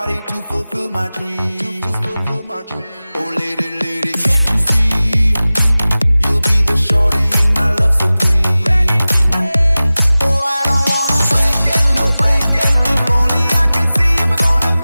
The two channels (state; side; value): inverted; both; correlation -0.97